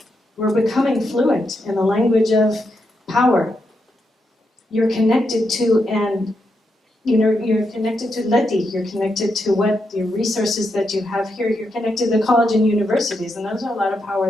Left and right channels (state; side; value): normal; both; correlation 0.83